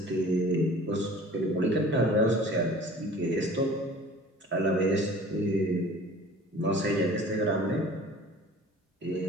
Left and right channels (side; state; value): both; normal; correlation 0.45